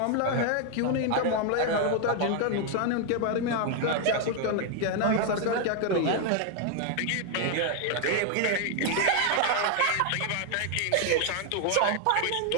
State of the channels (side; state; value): both; different; correlation 0.00